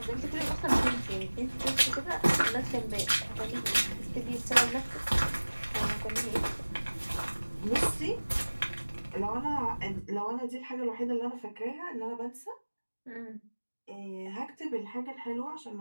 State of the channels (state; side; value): inverted; both; correlation -1.00